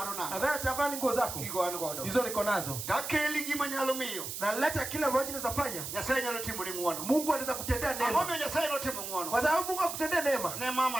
nanga. Nadhani atavaa nguo zako. Kigo an godo. Hizo niko nazo. Takeli gima nyalo miyo. Na leta kila ambacho naweza fanya. Nyasaye nyalo timo ni muono. Mungu anaweza kutendea neema. Amome Nyasaye no timo muono. Kwa sababu Mungu akutendea neema. Ne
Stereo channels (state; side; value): noise; right; hiss, 6 dB below the sound